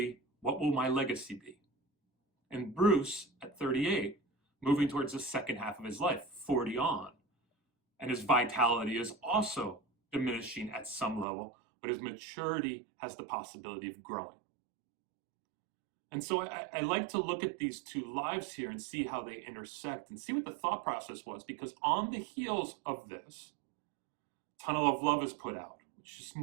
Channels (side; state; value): left; drops out; at 11.2 s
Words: what will my legacy be. And Bruce at 38, moving towards the second half of his life, 40 on. And his vitality is also diminishing at some level, but his maturity has the possibility of growing. And so I like to look at these two lives here and see how they intersect and see what the thought process was, because on the heels of this, Tunnel of Love is put out, which is